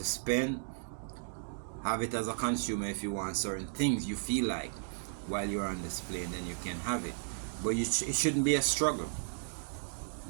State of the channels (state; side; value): silent; left; digital silence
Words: spend. Have it as a consumer if you want certain things you feel like while you're on display, and then you can have it. But it shouldn't be a struggle.